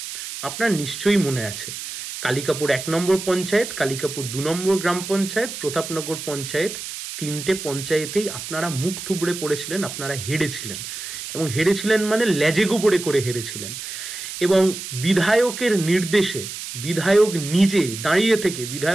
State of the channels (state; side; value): noise; right; hiss, 8 dB below the sound